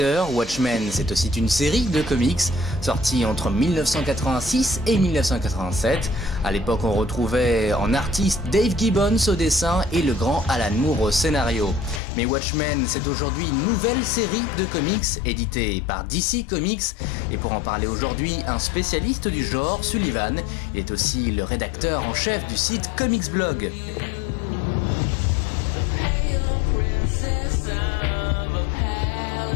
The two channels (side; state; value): right; drops out; at 12.0 s